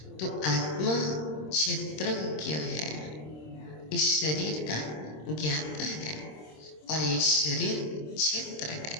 तो आत्मा क्षेत्रज्ञ है, इस शरीर का ज्ञाता है, और ये शरीर क्षेत्र है।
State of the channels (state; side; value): late; right; 26 ms